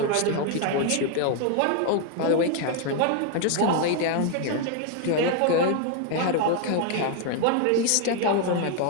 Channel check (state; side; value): different; both; correlation 0.00